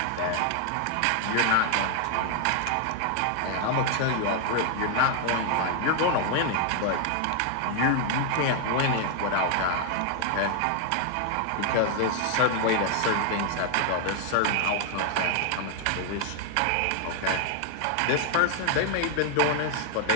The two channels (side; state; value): both; different; correlation 0.00